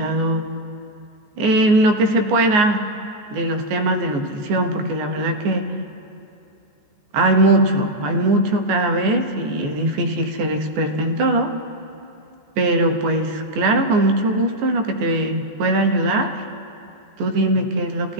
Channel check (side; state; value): left; late; 14 ms